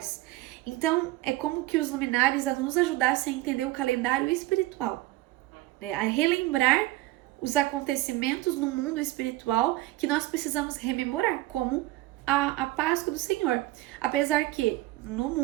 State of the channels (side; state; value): left; quieter; 17.9 dB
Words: Então, é como que os luminares nos ajudassem a entender o calendário espiritual, né? A relembrar os acontecimentos no mundo espiritual que nós precisamos rememorar, como a Páscoa do Senhor. Apesar que no